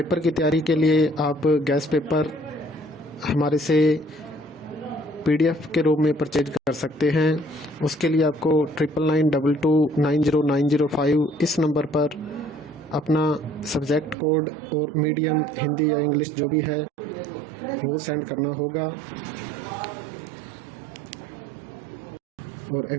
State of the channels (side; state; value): left; drops out; at 14.2 s